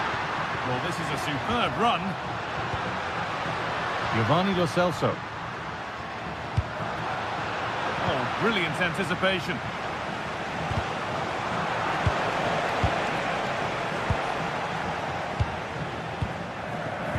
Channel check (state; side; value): identical; both; correlation 1.00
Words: Well, this is a superb run. Giovanni Lo Celso. Oh, brilliant anticipation.